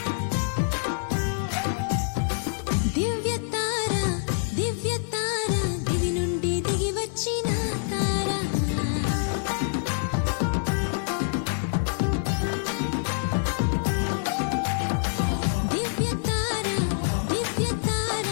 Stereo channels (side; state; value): right; silent; digital silence